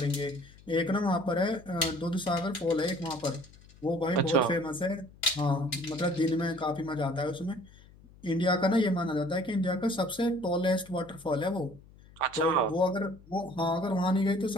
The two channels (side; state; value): left; noise; hum, 24 dB below the sound